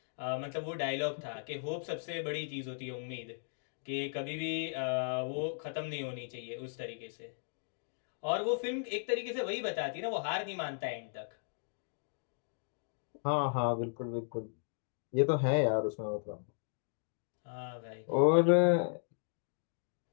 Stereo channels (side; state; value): right; silent; digital silence